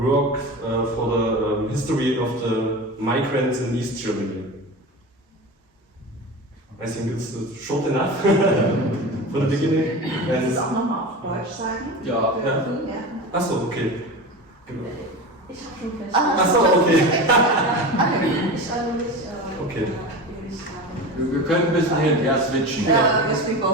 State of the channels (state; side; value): normal; both; correlation 0.28